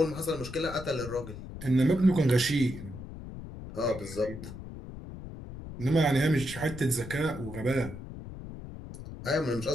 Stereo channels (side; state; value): left; noise; rumble, 11 dB below the sound